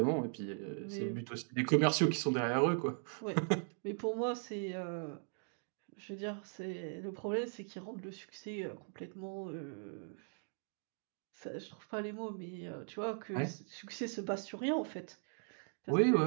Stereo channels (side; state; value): left; silent; 52 dB below the other